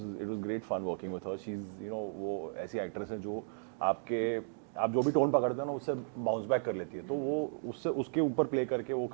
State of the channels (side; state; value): left; silent; digital silence